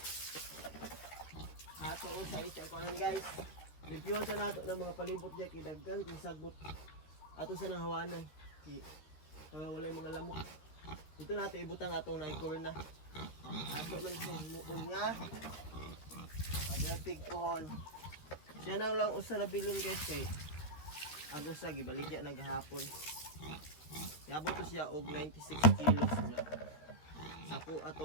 kunon guys. Reviewan sa nato ng mga palibot diya kidaggan kung sagbot ato sa nang hawanan. Wala yung mga lamok. Dito natin ibutang atong naikorna. Ato man siya muon nga. Paderpig pohon. Siya na lang usa na bilon guys kay agos sa gibaligya naghapon. Yabot to siya og 96 kilos na. Sapo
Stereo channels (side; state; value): right; late; 13 ms